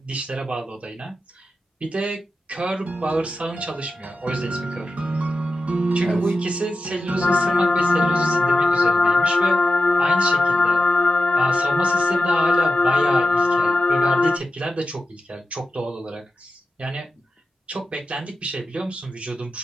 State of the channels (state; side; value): normal; both; correlation 0.91